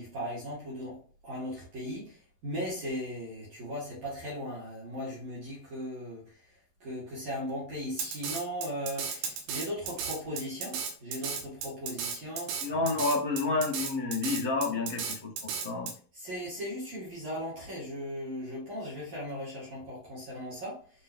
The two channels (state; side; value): late; left; 11 ms